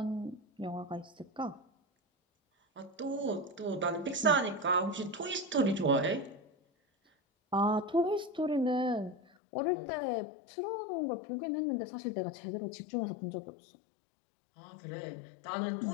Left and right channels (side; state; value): right; drops out; at 9.2 s